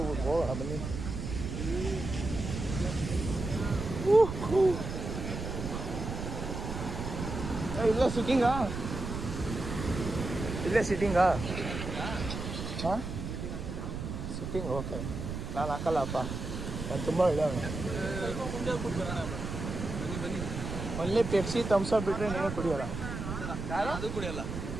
ಬನ್ನಿ. ಇಲ್ಲ ಸಿಟ್ಟಿಂಗಾ? ಇಲ್ಲೇ ಸಿಟ್ಟಿಂಗಾ? ಹಾಂ, ಸಿಟ್ಟಿಂಗ್ ಓಕೆ. ನಾನು ಹಾಕಲ್ಲಪ್ಪ, ನಾನು ತುಂಬ ಒಳ್ಳೆಯವನು. ಒನ್ಲಿ ಪೆಪ್ಸಿ ಥಮ್ಸಪ್ ಬಿಟ್ಟರೆ ನೀನು ಕುಡಿಯೋಲ್ಲ. ಅದು ಕುಡಿಯಲ್ಲ.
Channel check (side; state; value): right; noise; rumble, 5 dB below the sound